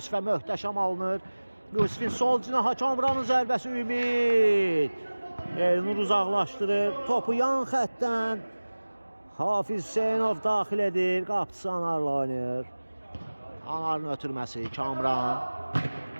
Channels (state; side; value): inverted; both; correlation -1.00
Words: möhtəşəm alınır. Yusifin sol cinaha Kamranın zərbəsi Ümid. Elnur uzaqlaşdırır. Topu yan xəttdən Hafiz Hüseynov daxil edir. Qapısı Anarla oynayır. Anarın ötürməsi Kamran.